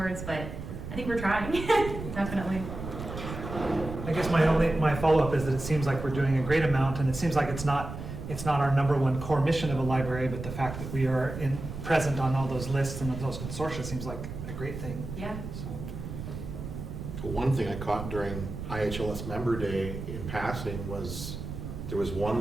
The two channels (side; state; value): right; noise; rumble, 8 dB below the sound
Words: But I think we're trying, definitely. I guess my follow-up is that it seems like we're doing a great amount, and it seems like it's not our number one core mission of a library, but the fact that we are present on all those lists and those consortia seems like a great thing. Yeah. So. One thing I caught during IHLS Member Day in passing was there was